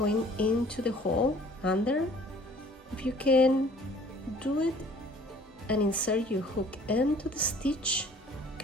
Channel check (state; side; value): normal; both; correlation 0.53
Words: into the hole under. If you can do it and insert your hook into the stitch, you